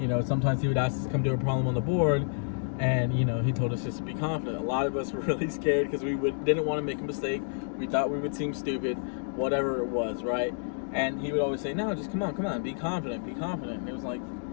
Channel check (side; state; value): right; silent; digital silence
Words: Sometimes he would ask us to come do a problem on the board, and he told us just to be confident. A lot of us were really scared because we didn't want to make a mistake. We thought we would seem stupid, whatever it was, right? And he would always say, no, just come on, be confident, be confident. And it was like,